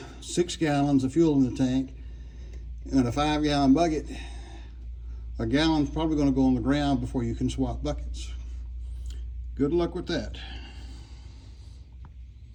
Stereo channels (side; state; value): both; identical; correlation 1.00